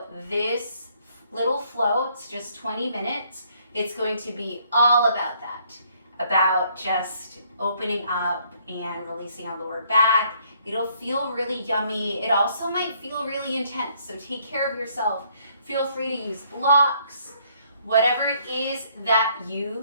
this little flow, it's just 20 minutes. It's going to be all about that, about just opening up and releasing our lower back. It'll feel really yummy. It also might feel really intense. So take care of yourself. Feel free to use blocks, whatever it is that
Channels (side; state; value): both; inverted; correlation -0.66